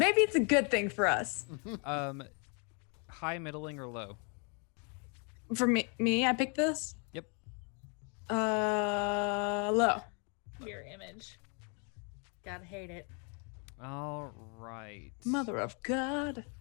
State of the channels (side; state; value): right; quieter; 36.8 dB